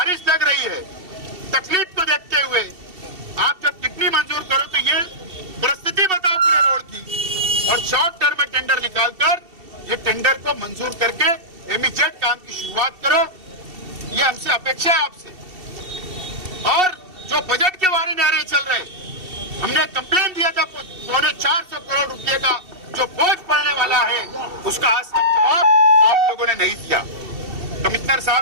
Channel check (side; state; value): left; late; 2.7 ms